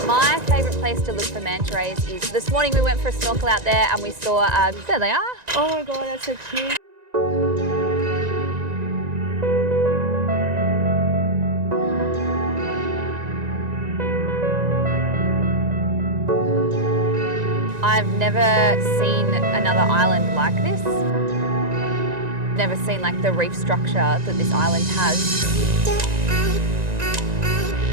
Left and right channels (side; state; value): left; late; 1.9 ms